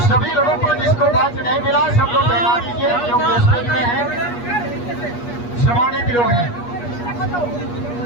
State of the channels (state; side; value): late; right; 8.4 ms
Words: सभी लोगों को जिसको बात नहीं मिला, सब लोग बता दीजिए, जो स्टेज में है, सम्मानित लोग हैं।